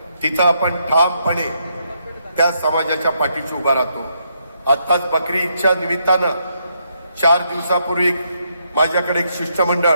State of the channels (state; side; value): inverted; both; correlation -0.77